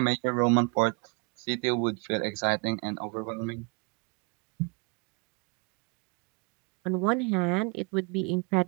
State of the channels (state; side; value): quieter; left; 30.9 dB